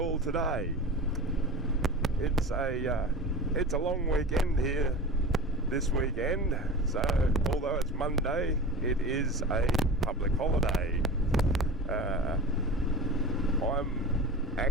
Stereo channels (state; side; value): normal; both; correlation 0.34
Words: today? It's a long weekend here this weekend, so although it's Monday, it is a public holiday. I'm